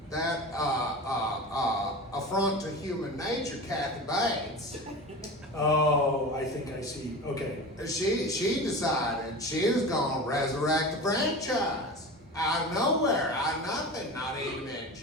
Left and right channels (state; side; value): normal; both; correlation 0.31